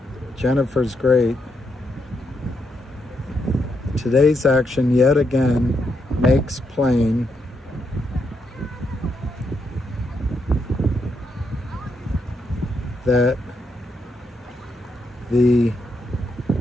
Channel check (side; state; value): both; normal; correlation 0.80